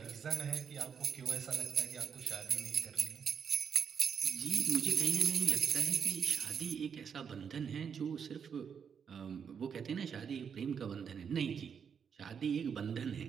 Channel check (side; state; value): left; quieter; 7.0 dB